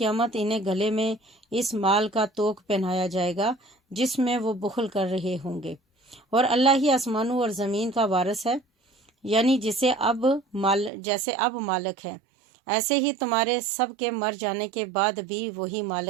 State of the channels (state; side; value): drops out; left; at 10.9 s